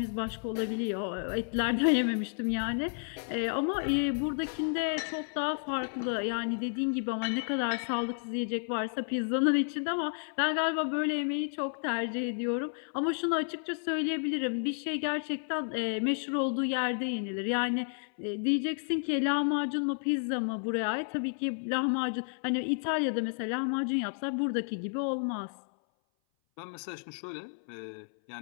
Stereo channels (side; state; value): right; silent; 57 dB below the other